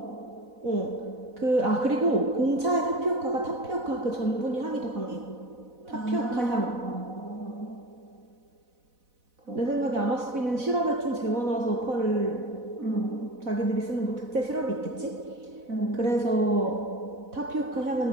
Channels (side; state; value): left; late; 4.0 ms